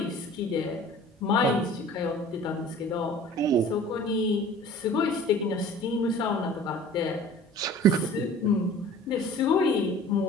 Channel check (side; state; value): both; normal; correlation 0.45